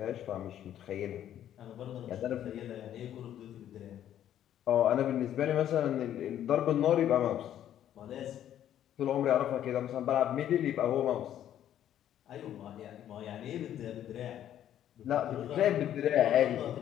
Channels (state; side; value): quieter; right; 11.0 dB